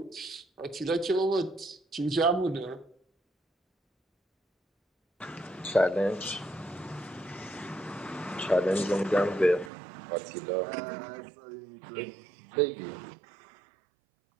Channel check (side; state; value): left; drops out; at 9.7 s